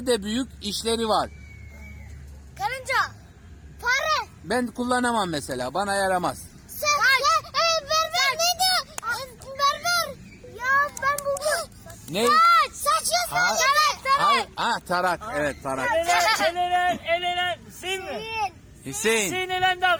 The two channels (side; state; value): both; identical; correlation 1.00